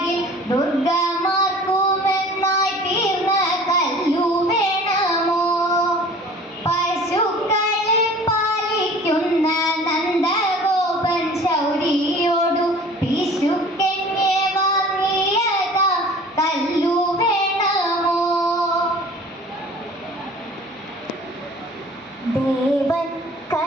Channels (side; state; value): both; normal; correlation 0.46